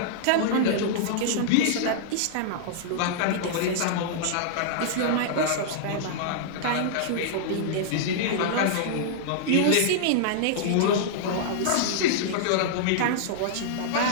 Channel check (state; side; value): different; both; correlation -0.01